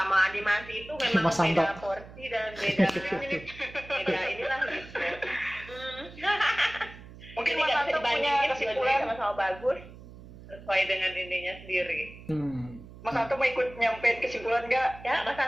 animasi itu memang Mas Santo. beda porsi dan beda beda inilah gitu. Mungkin Ini Mas nggak bisa Santo punya dibandingin, kesimpulan. dua-duanya sama-sama bagus sesuai dengan ininya sendiri. Mas Santo mau ikut nyampein kesimpulan nggak? Ya, Mas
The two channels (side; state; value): right; noise; hum, 17 dB below the sound